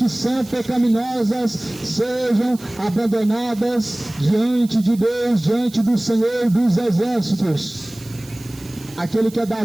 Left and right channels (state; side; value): noise; right; hiss, 21 dB below the sound